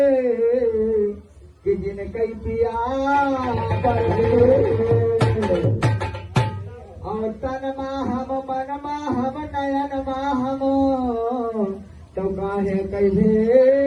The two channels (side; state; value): both; identical; correlation 1.00